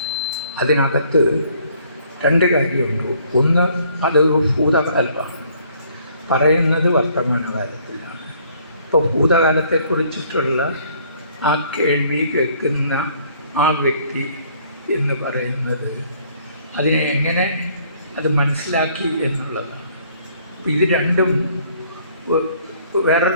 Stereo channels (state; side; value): inverted; both; correlation -0.62